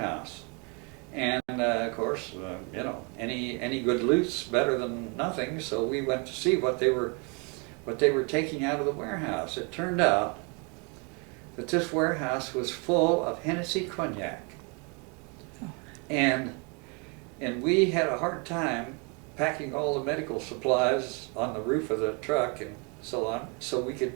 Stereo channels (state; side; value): quieter; left; 32.4 dB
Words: And of course, you know, any good loot's better than nothing, so we went to see what they were taking out of the warehouse. It turned out that this warehouse was full of Hennessy cognac. Oh. And we had a hard time packing all the medical supplies on the roof of the truck and so on, so we could